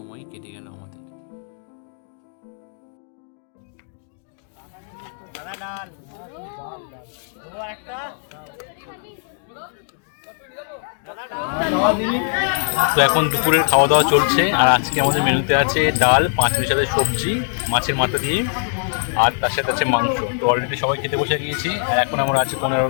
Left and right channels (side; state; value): right; silent; 62 dB below the other